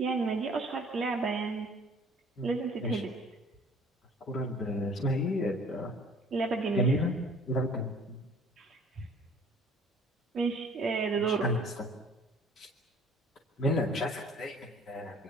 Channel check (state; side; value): normal; both; correlation 0.52